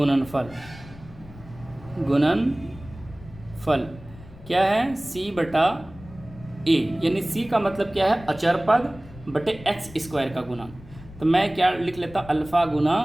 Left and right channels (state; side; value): noise; left; rumble, 18 dB below the sound